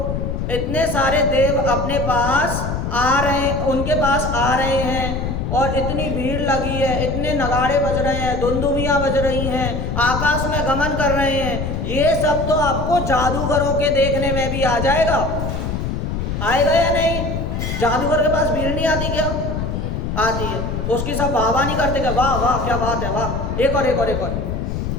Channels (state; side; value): noise; left; rumble, 3 dB below the sound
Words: इतने सारे देव अपने पास आ रहे, उनके पास आ रहे हैं, और इतनी भीड़ लगी है, इतने नगाड़े बज रहे हैं, दुंदुभियाँ बज रही हैं, आकाश में गमन कर रहे हैं। ये सब तो आपको जादूगरों के देखने में भी आ जाएगा। आएगा या नहीं? जादूगर के पास भीड़ नहीं आती क्या? आती है। उसकी सब वाह नहीं करते क्या? वाह वाह क्या बात है, वाह, एक और एक और एक और